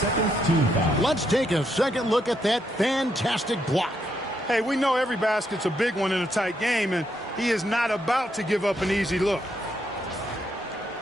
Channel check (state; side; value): normal; both; correlation 0.78